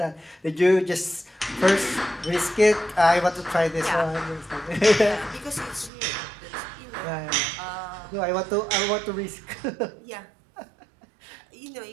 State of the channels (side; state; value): left; drops out; at 5.9 s